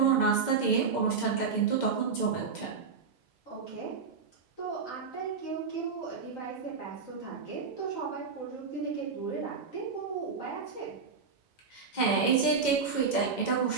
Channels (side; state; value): left; quieter; 5.3 dB